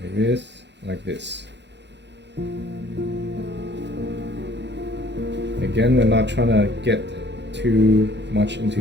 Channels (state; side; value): late; left; 0.51 ms